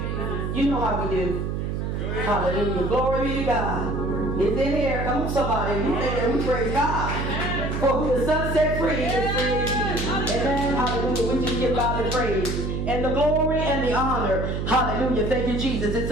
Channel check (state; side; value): noise; right; hum, 2 dB below the sound